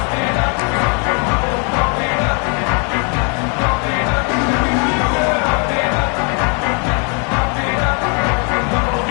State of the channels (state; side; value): quieter; right; 37.0 dB